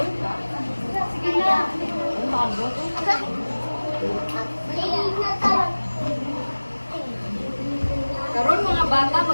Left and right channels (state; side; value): inverted; both; correlation -1.00